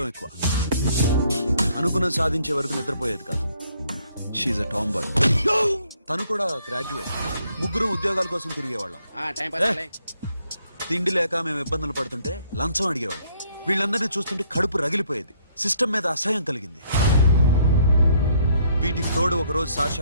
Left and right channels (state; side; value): inverted; both; correlation -0.67